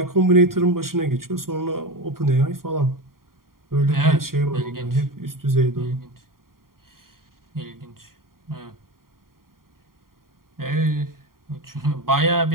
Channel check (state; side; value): late; left; 0.92 ms